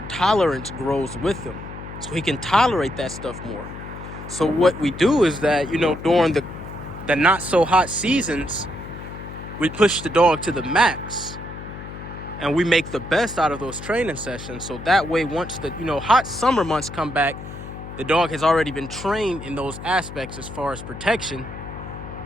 tolerance grows with them. So he can tolerate that stuff more. So what we do is that, during the not so hot seasons, we push the dog to the max. And we make the best out of those training sessions. So that way, once the, hot summer months come back, the dog has already been trained in those aspects as far as protection,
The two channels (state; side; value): noise; left; hum, 12 dB below the sound